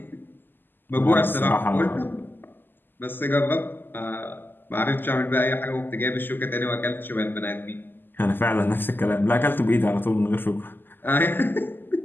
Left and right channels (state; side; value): late; right; 0.093 ms